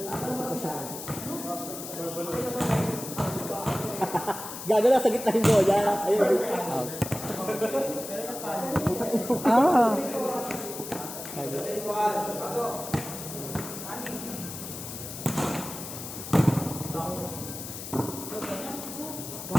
Gago na sa gitna yung bola. Ayun. Ah.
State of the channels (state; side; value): noise; left; hiss, 9 dB below the sound